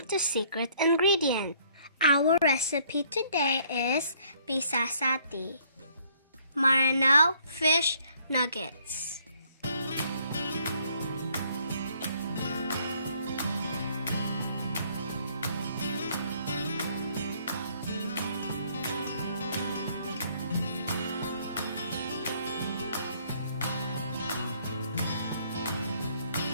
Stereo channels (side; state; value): both; inverted; correlation -0.63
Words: to Secret Ingredient. Our recipe today is PISASATI, Maranao fish nuggets.